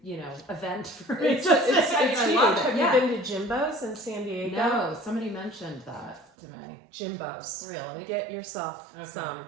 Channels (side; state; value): left; drops out; at 6.2 s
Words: event for me. It's huge. Have Yeah. you been to Jimbo's in San Diego? No, somebody mentioned that to me. Jimbo's. Really? Get yourself some.